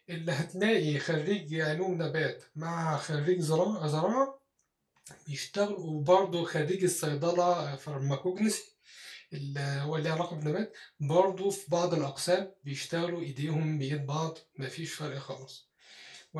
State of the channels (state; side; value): identical; both; correlation 1.00